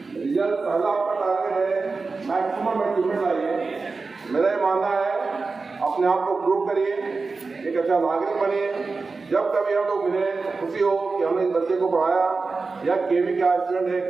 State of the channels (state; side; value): quieter; left; 4.2 dB